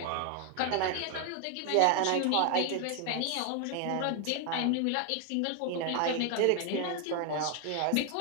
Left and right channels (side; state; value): both; different; correlation 0.00